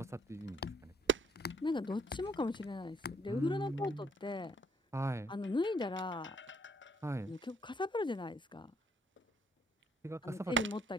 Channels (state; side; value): normal; both; correlation 0.65